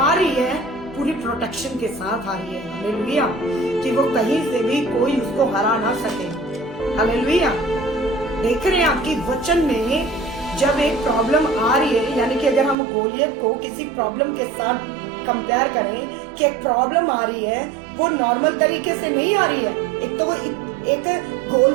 रही है, पूरी प्रोटेक्शन के साथ आ रही है। हालेलुया। कि वो कहीं से भी कोई उसको हरा ना सके। हालेलुया। देख रहे हैं आपकी वचन में जब एक प्रॉब्लम आ रही है, यानी कि अगर हम गोलियत को किसी प्रॉब्लम के साथ कंपेयर करें कि एक प्रॉब्लम आ रही है, वो नॉर्मल तरीके से नहीं आ रही है। एक तो वो एक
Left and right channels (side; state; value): left; drops out; at 12.8 s